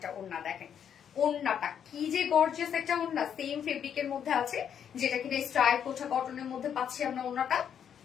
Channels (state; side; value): quieter; right; 8.5 dB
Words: ওড়না, দেখেন ওড়নাটা কি যে গর্জিয়াস একটা ওড়না, সেম ফেব্রিকের মধ্যে আছে, যেটা কিনা স্ট্রাইপ কোঠা কটনের মধ্যে পাচ্ছি আমরা। ওড়নাটা